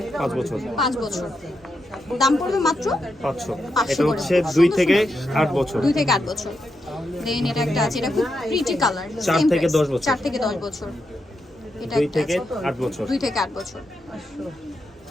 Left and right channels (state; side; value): normal; both; correlation 0.84